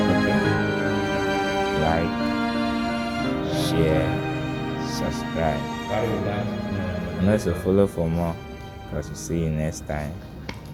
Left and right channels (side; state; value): both; identical; correlation 1.00